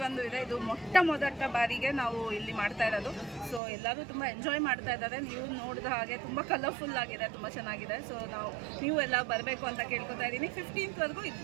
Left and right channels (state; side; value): drops out; left; at 3.6 s